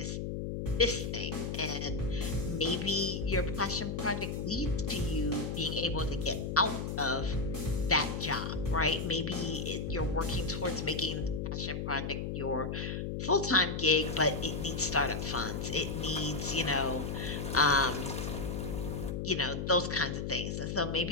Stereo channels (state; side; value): noise; left; hum, 3 dB below the sound